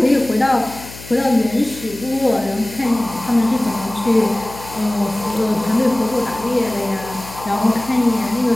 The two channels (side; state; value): left; noise; hum, 16 dB below the sound